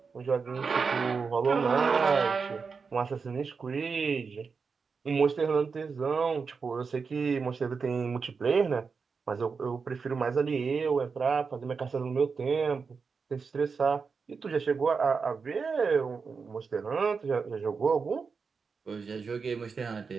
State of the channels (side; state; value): left; quieter; 5.2 dB